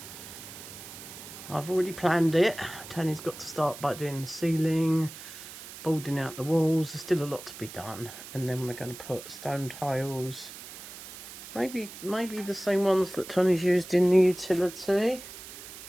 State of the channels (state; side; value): noise; right; hiss, 14 dB below the sound